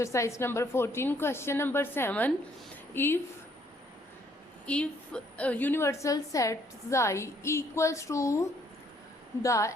number 14. Question number 7. If universal set xi equals to the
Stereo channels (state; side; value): normal; both; correlation 0.66